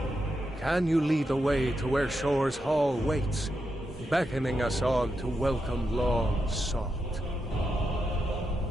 Can you lead the way to where Shore's Hall waits, beckoning us on to welcome long sought?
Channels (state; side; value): normal; both; correlation 0.85